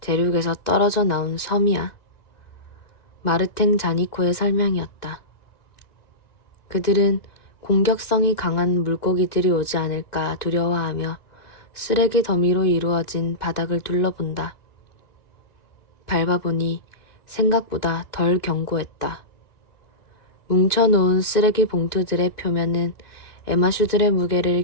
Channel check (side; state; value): right; late; 2.0 ms